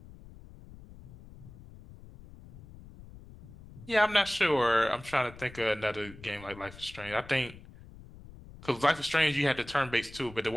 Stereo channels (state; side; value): noise; left; rumble, 18 dB below the sound